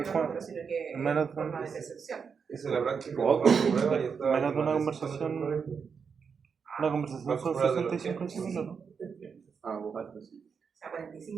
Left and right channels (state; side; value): quieter; left; 6.1 dB